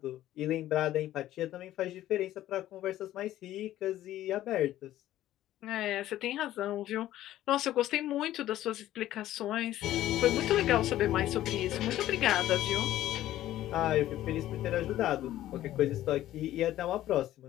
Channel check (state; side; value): quieter; right; 13.8 dB